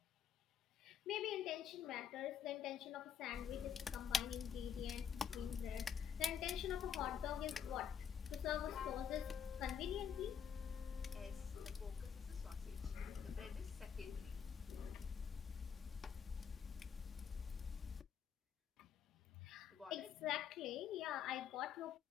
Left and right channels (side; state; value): right; quieter; 7.8 dB